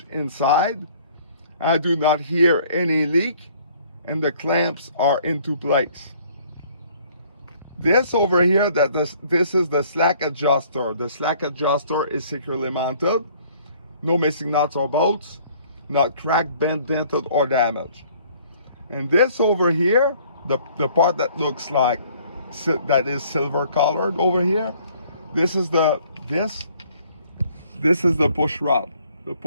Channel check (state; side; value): inverted; both; correlation -0.58